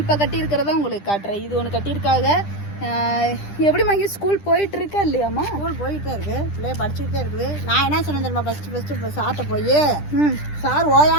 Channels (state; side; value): late; right; 10 ms